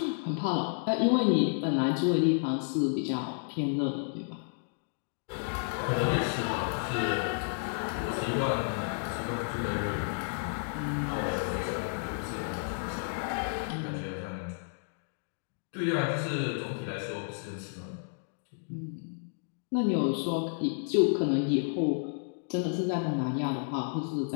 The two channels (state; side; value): silent; right; digital silence